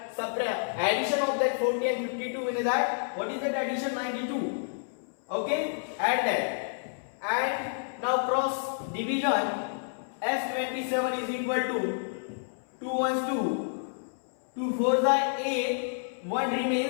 subtract addition of that 40 and 52 in that. What is that addition? 92. Okay, add that. And now cross division. S27 is equal to 2 ones 2, 2 fours are 8, 1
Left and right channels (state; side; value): silent; right; 58 dB below the other